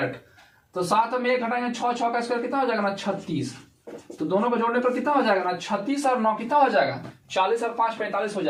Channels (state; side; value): identical; both; correlation 1.00